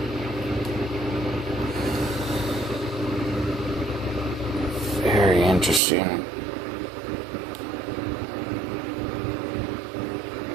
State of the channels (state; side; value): drops out; left; at 5.8 s